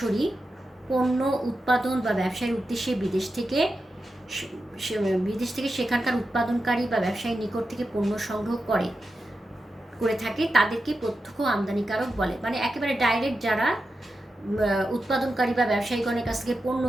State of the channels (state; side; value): normal; both; correlation 0.90